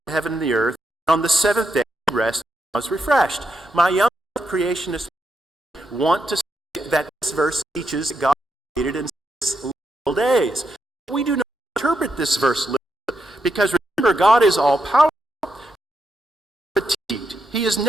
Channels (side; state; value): both; normal; correlation 0.83